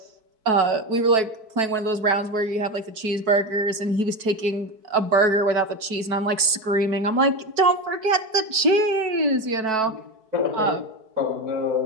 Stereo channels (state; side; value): late; left; 4.6 ms